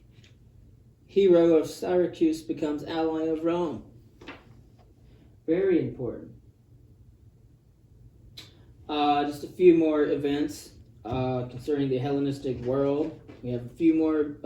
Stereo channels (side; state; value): both; identical; correlation 1.00